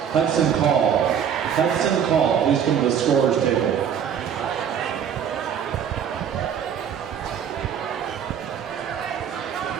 Hudson Call. Hudson Call, please come to the scorer's table.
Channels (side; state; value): left; quieter; 8.3 dB